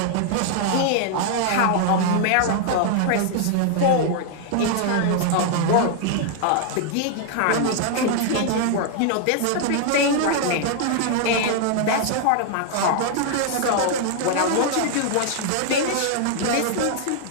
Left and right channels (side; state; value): both; different; correlation 0.00